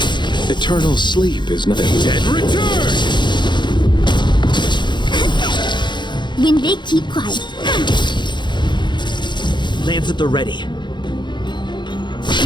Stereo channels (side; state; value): right; late; 0.22 ms